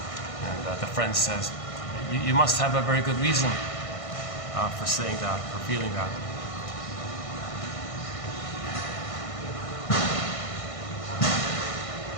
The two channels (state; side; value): late; right; 1.5 ms